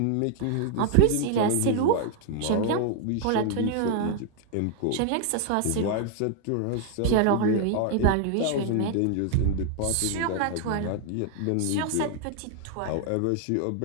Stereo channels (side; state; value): both; different; correlation 0.00